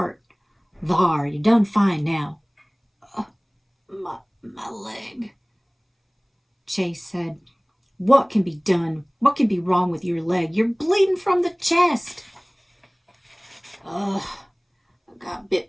Thar, you done fine now. My leg. Chase said, what can be done? What can be wrong with your leg? You're bleeding from the chest. I got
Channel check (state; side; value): identical; both; correlation 1.00